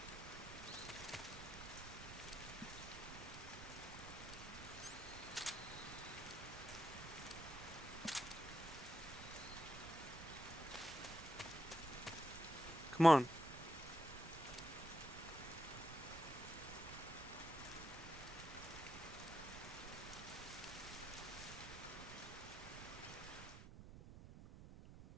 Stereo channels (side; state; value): right; noise; rumble, 12 dB below the sound